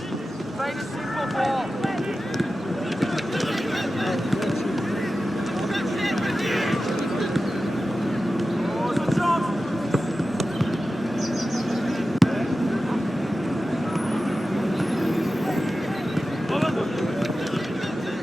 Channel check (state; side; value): normal; both; correlation 0.94